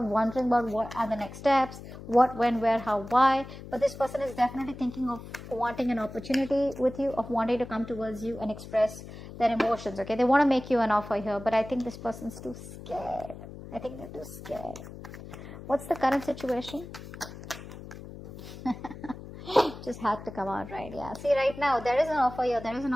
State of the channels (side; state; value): left; noise; hum, 13 dB below the sound